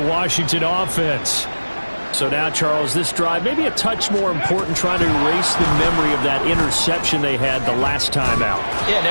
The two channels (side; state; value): both; inverted; correlation -1.00